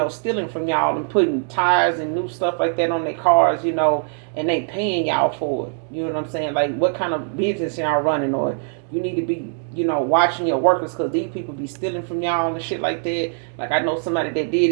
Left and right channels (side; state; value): left; silent; 65 dB below the other